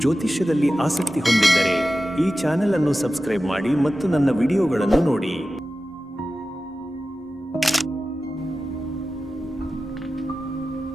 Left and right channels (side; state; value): both; normal; correlation 0.94